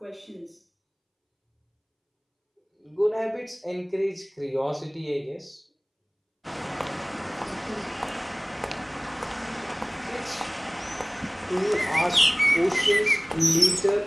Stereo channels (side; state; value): both; identical; correlation 1.00